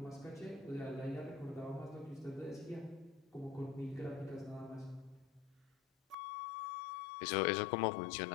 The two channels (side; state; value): right; drops out; at 6.2 s